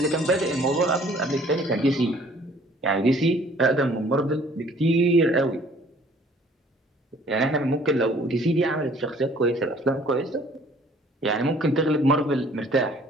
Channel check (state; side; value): normal; both; correlation 0.56